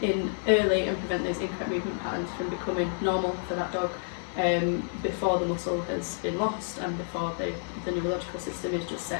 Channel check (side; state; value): right; silent; 58 dB below the other